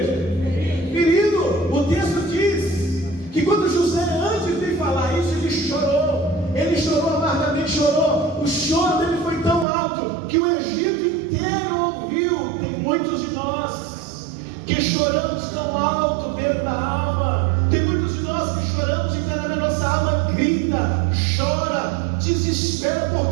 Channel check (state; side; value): drops out; left; at 9.7 s